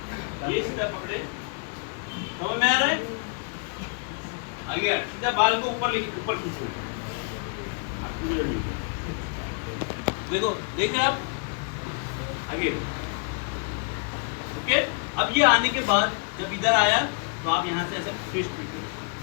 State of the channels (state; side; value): quieter; right; 39.2 dB